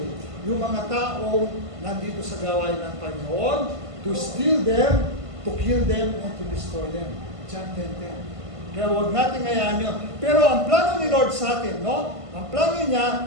yung mga taong nandito sa gawain ng Panginoon, to steal them, to kill them, and to destroy them. John 10:10. Kaya huwag natin hayaan yun. Pero ang plano ni Lord sa atin, no? Ang plano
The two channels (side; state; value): left; late; 1.5 ms